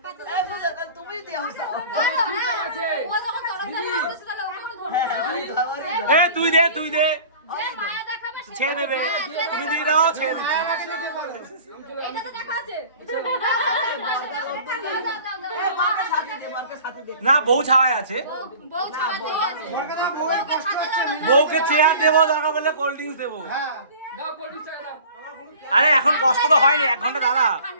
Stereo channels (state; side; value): inverted; both; correlation -0.44